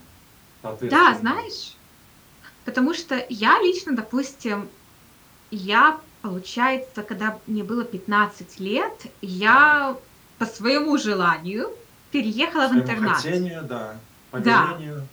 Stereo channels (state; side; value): identical; both; correlation 1.00